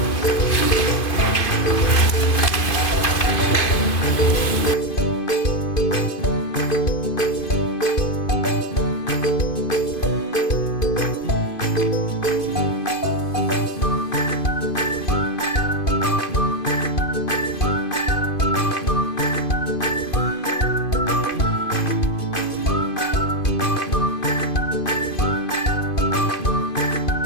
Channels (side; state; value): right; late; 2.5 ms